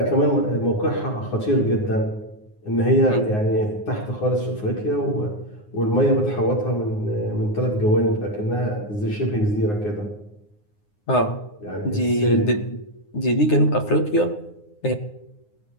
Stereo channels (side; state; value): right; late; 9.6 ms